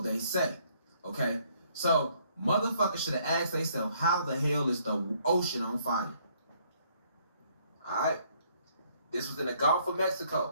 they say. Okay? So, motherfuckers should have asked themselves, how the hell is the ocean on fire? Alright? This was in the Gulf of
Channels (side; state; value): both; inverted; correlation -0.66